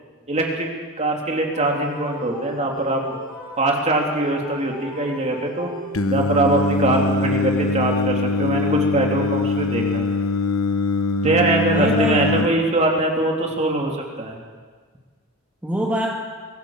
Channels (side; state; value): both; normal; correlation 0.28